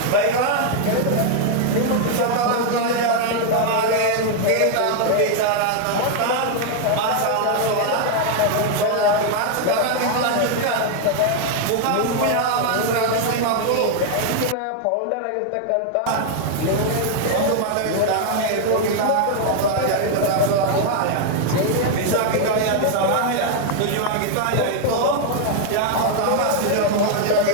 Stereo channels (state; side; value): different; both; correlation 0.00